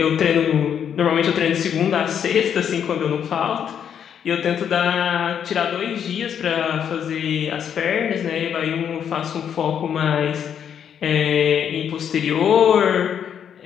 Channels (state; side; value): quieter; right; 8.5 dB